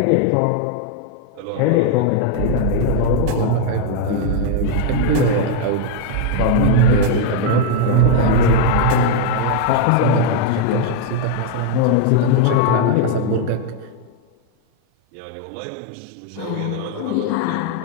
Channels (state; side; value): different; both; correlation 0.00